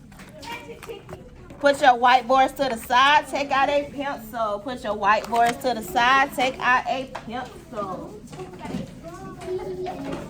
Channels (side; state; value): both; identical; correlation 1.00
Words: Put your whiteboards to the side. Take out a pencil. Put your whiteboards to the side. Take out a pencil.